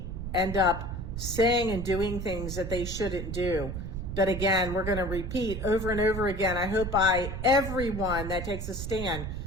end up saying and doing things that they shouldn't do. But again, we're going to repeat over and over again. I hope by everyone that takes a stand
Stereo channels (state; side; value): noise; right; rumble, 5 dB below the sound